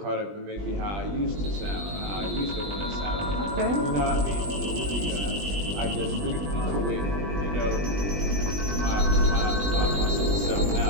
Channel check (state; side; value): late; left; 20 ms